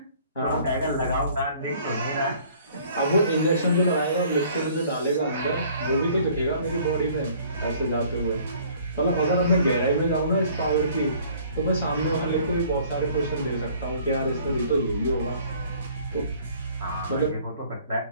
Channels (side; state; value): both; inverted; correlation -0.55